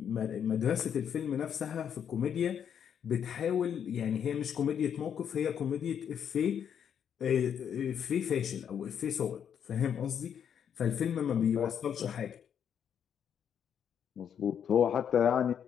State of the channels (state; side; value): quieter; right; 8.4 dB